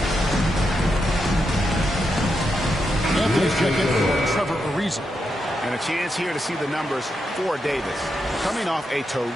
And a chance here to see the numbers for Davis. Coming off a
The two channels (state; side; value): normal; both; correlation 0.84